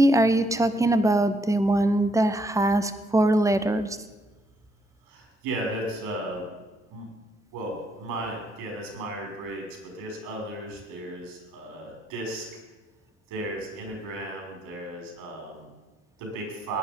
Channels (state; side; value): normal; both; correlation 0.74